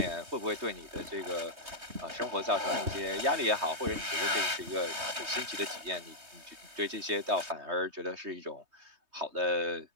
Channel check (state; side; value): late; left; 3.2 ms